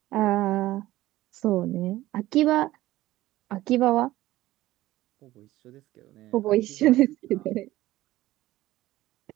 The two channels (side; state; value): left; quieter; 16.3 dB